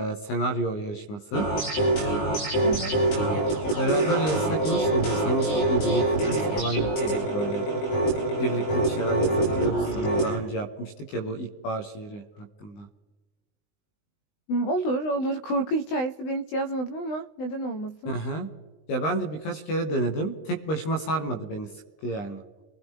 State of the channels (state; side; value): late; right; 20 ms